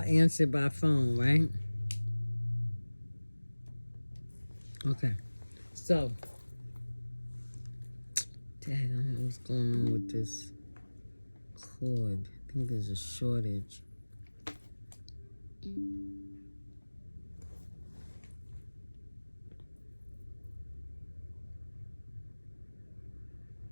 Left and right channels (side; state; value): both; inverted; correlation -1.00